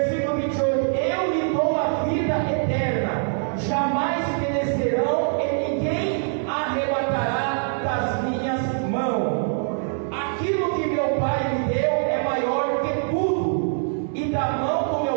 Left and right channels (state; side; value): silent; left; 63 dB below the other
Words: 28: eu lhe dou a vida eterna, jamais perecerão e ninguém arrebatará das minhas mãos. Aquilo que meu Pai me deu é maior que tudo, e da mão do